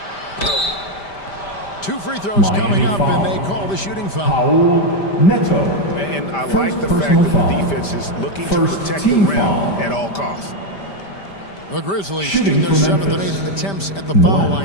2 free throws Miami coming up, foul. and they call the shooting foul. Paul Neto. And I First like the fact personal that foul. the defense is looking to First protect the team rim foul. at all costs. The Grizzlies Shooting shooting their for 7th and Memphis. 8th attempts at the foul 1,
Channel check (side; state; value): right; late; 5.1 ms